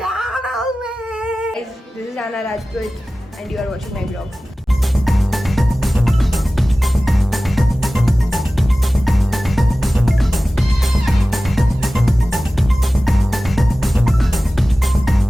में। This is Aana Rajput and you are watching my blog.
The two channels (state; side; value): normal; both; correlation 0.96